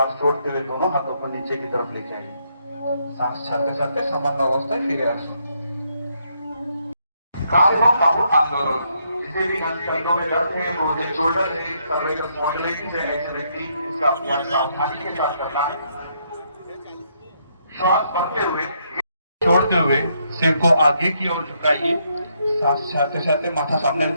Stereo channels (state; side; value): inverted; both; correlation -0.75